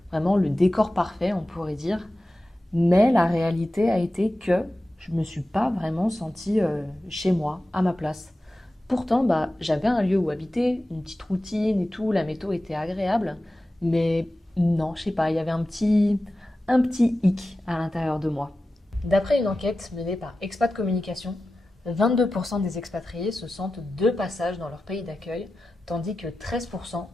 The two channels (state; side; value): normal; both; correlation 0.94